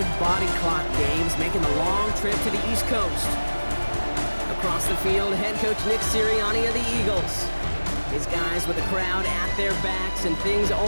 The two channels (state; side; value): inverted; both; correlation -1.00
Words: body clock games, making the long trip to the East Coast. Across the field, head coach Nick Sirianni of the Eagles. His guys with the crowd at their backs, and things